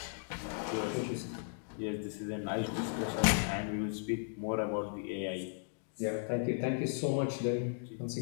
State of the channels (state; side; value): silent; right; digital silence